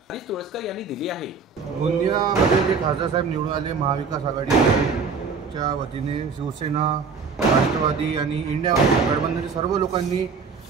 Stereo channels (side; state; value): left; quieter; 5.2 dB